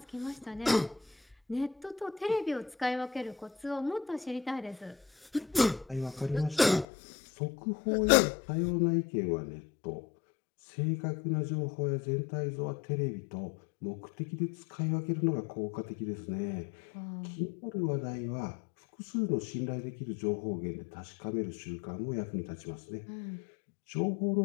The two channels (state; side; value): drops out; right; at 6.9 s